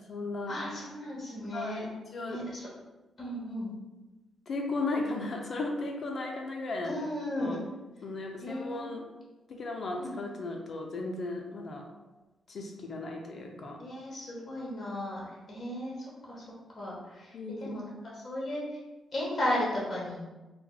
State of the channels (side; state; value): both; normal; correlation 0.74